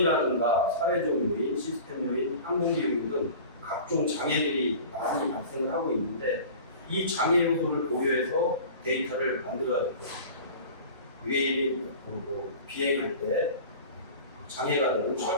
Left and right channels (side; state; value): both; inverted; correlation -0.39